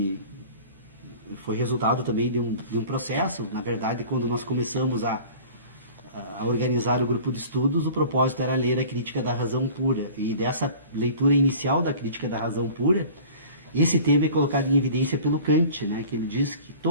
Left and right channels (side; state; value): both; inverted; correlation -0.44